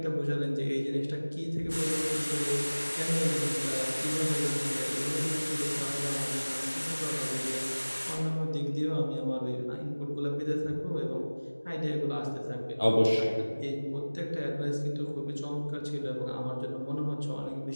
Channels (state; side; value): inverted; both; correlation -1.00